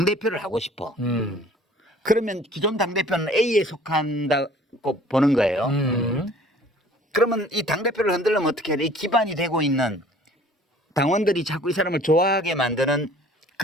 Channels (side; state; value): both; normal; correlation 0.51